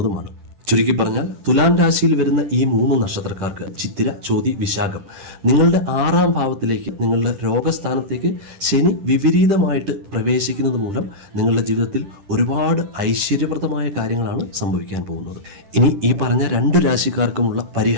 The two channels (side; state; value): left; late; 10 ms